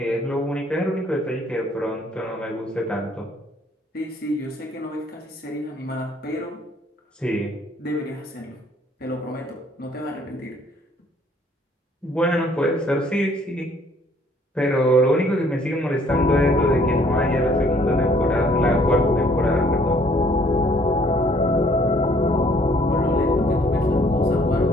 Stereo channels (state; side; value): normal; both; correlation 0.61